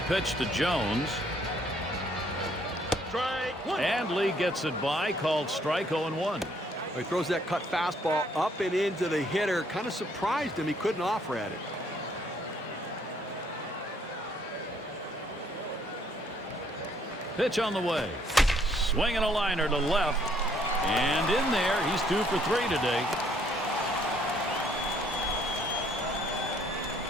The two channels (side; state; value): both; normal; correlation 0.66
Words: pitch to Jones. Strike one. And Lee gets it by, called strike 0-1. He throws that cut fastball up and into the hitter. Kind of surprised him. He couldn't offer at it. Pitch on the way. Swinging a liner to left. And in there, he's 2 for 3 today.